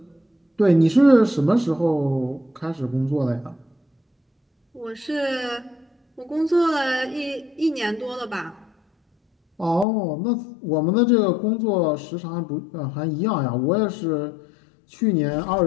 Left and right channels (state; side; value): drops out; right; at 9.9 s